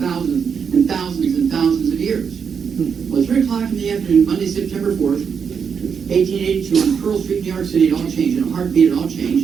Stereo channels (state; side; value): quieter; left; 6.6 dB